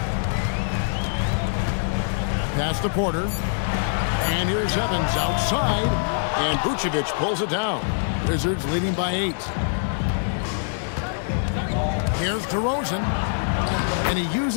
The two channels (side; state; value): right; silent; digital silence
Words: Pass to Porter. And here's Evans outside. And Vucevic pulls it down. Wizards leading by 8. Here's DeRozan. And he